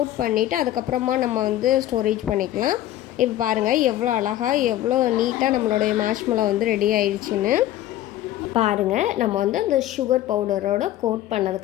பண்ணிவிட்டு அதுக்கப்புறமா நம்ம வந்து ஸ்டோரேஜ் பண்ணிக்கலாம். இப்போ பாருங்கள் எவ்வளோ அழகாக எவ்வளோ நீட்டாக நம்மளுடைய மார்ஷ்மெலோ வந்து ரெடி ஆயிடுச்சுன்னு. பாருங்கள் நம்ம வந்து அந்த சுகர் பவுடரோட கோட்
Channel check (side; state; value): right; quieter; 13.4 dB